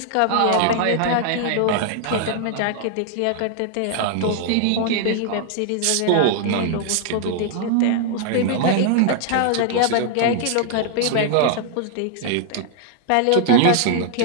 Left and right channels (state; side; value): different; both; correlation -0.01